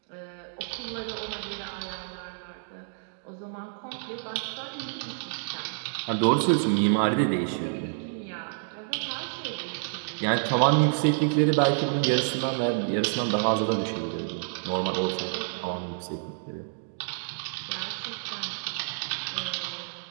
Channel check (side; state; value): left; silent; digital silence